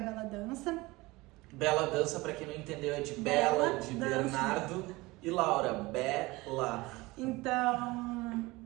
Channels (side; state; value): left; quieter; 21.5 dB